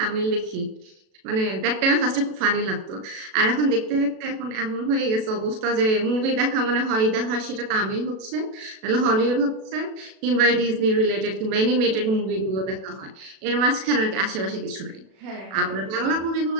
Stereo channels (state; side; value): late; left; 37 ms